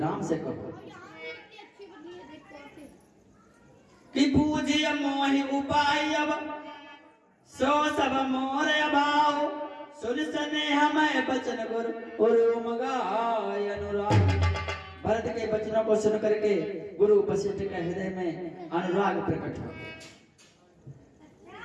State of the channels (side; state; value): both; identical; correlation 1.00